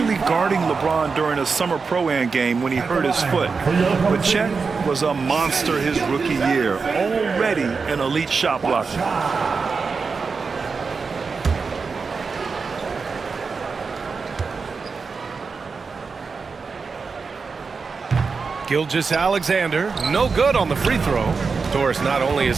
guarding LeBron during a summer Pro-Am game when he hurt his foot. But Chet was a monster his rookie year, already an elite shot blocker. Gilgeous-Alexander, no good on the free throw. Of course, not only is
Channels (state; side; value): quieter; left; 4.9 dB